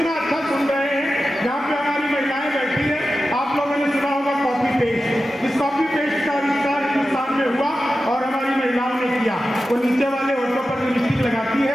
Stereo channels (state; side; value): normal; both; correlation 0.93